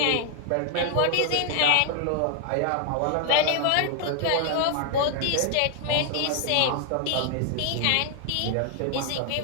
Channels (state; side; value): different; both; correlation 0.00